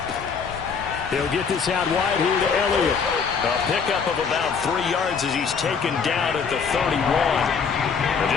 He'll get this out wide here to Elliott. A pickup of about 3 yards as he's taken down at the 31. And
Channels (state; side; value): quieter; right; 5.9 dB